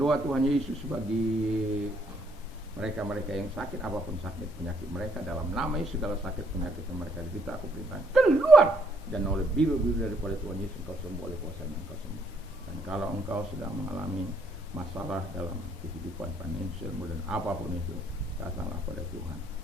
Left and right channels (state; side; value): normal; both; correlation 0.69